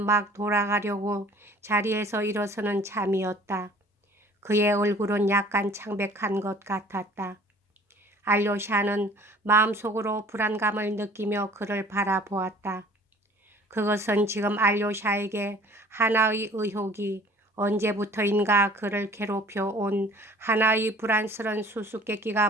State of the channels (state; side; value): normal; both; correlation 0.50